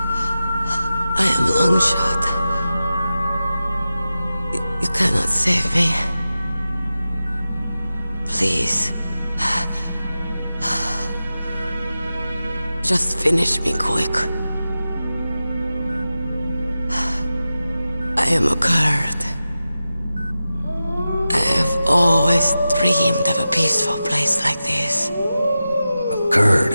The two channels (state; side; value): inverted; both; correlation -0.93